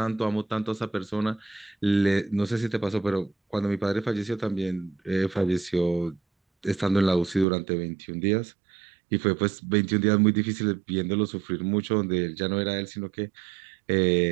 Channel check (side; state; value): left; drops out; at 7.5 s